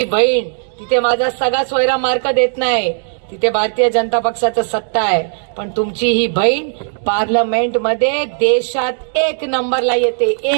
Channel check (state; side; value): silent; left; digital silence